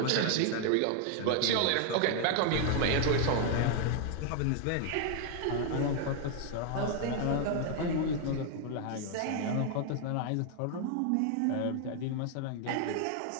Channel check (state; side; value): different; both; correlation 0.00